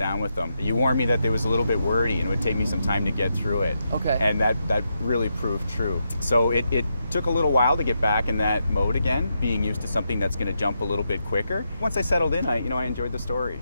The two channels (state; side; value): inverted; both; correlation -0.84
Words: with them, you warned me that it was a little bit wordy and it would take me some time to get through it. Okay. And that really proved true. So it took a little while to get back in that mode again, being used to something that's going to jump a little bit quicker. Once I settled in, I enjoyed the